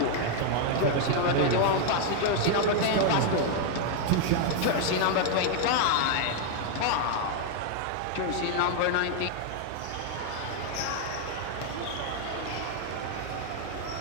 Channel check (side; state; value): both; different; correlation 0.00